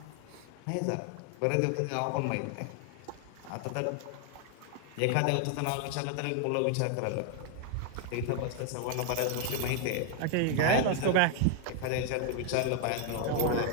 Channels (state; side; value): different; both; correlation 0.00